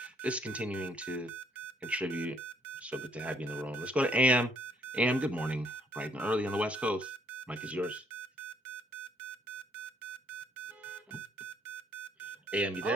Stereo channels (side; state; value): both; normal; correlation 0.66